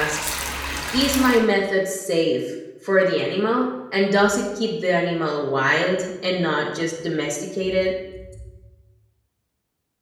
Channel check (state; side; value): identical; both; correlation 1.00